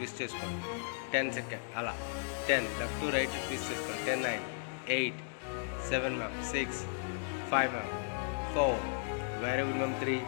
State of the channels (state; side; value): silent; right; digital silence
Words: చేసుకోండి. 10 seconds అలా. 10, left to right twist చేసుకోండి. 10, 9, 8, 7 ma'am. 6, 5 ma'am. 4, very good ma'am. 3,